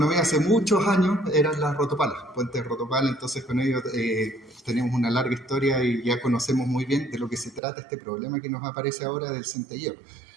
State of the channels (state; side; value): drops out; left; at 7.6 s